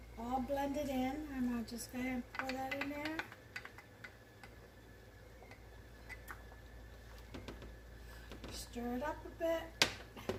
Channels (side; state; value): both; identical; correlation 1.00